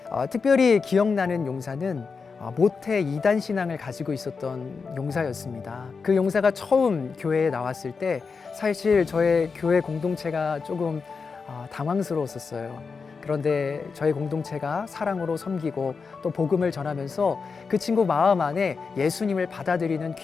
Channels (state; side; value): quieter; right; 5.1 dB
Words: 특별히 기억나는 용사는 모태 이단 신앙을 가지고 있었던 용사였습니다. 그 용사가 처음 교회에 나왔을 때 사실 저의 교회 공동체가 조금 당황스러웠었어요. 그런데 저희 공동체가 사랑으로 섬기고 또 복음을 전하면서 그 친구 마음 안에 예수님을 받아들이는